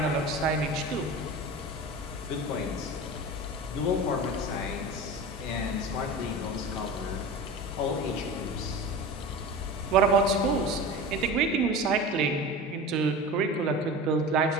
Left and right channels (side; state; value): both; normal; correlation 0.31